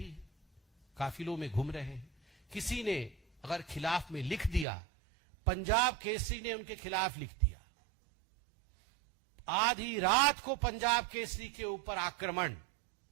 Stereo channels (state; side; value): drops out; left; at 4.7 s